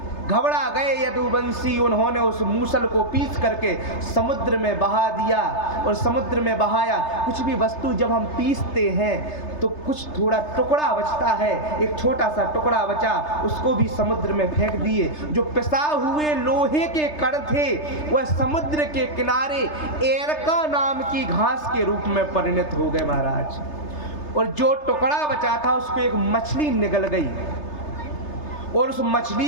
घबरा गए यदुवंशी, उन्होंने उस मूसल को पीस करके समुद्र में बहा दिया, और समुद्र में बहाया। कुछ भी वस्तु जब हम पीसते हैं तो कुछ थोड़ा टुकड़ा बचता है, एक छोटा सा टुकड़ा बचा, उसको भी समुद्र में फेंक दिए। जो पिसा हुए लोहे के कण थे वह समुद्र के किनारे एरका नाम की घास के रूप में परिणत हो गए महाराज। और जो टुकड़ा बचा था उसको एक मछली निगल गई, और उस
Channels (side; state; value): right; late; 3.3 ms